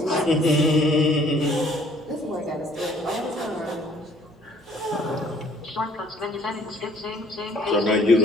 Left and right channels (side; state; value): both; normal; correlation 0.59